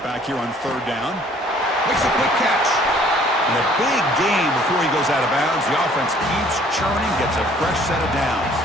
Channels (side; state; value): both; normal; correlation 0.57